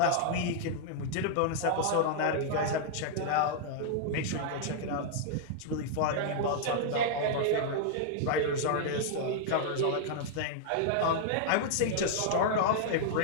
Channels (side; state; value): both; different; correlation -0.01